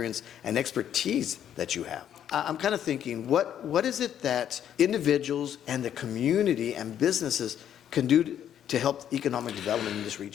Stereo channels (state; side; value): quieter; right; 10.0 dB